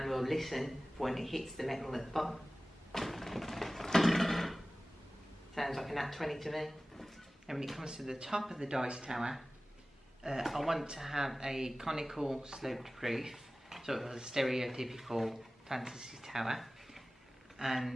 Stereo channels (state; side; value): normal; both; correlation 0.97